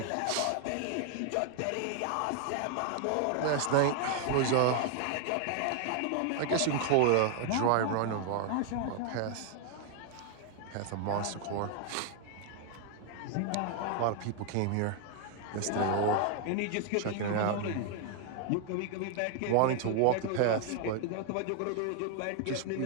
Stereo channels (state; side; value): different; both; correlation 0.00